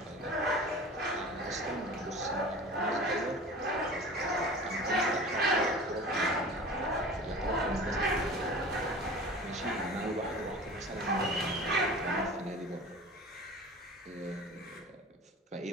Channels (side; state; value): both; normal; correlation 0.38